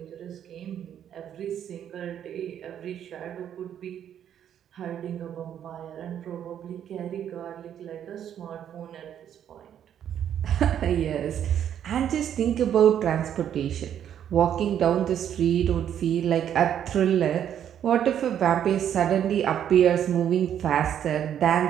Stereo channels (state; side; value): quieter; left; 9.7 dB